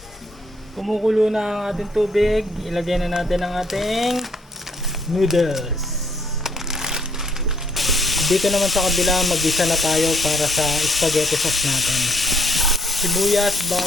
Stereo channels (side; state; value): both; normal; correlation 0.66